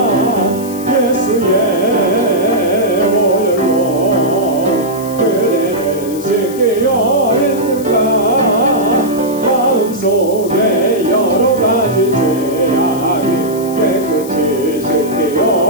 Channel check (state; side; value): noise; left; hiss, 16 dB below the sound